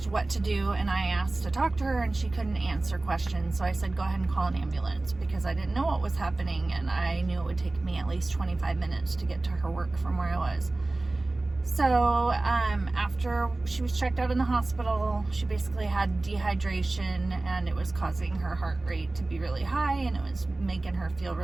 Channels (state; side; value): quieter; left; 3.0 dB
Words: what to do, and I asked to talk to her, and she couldn't answer questions. So I said, go ahead and call an ambulance, because I didn't know what was happening, and I knew it would take me at least 25 minutes to get to her work from where I was. So after she was checked out in the hospital, she basically had dehydration, and it was causing her heart rate to be really high, and it was making her feel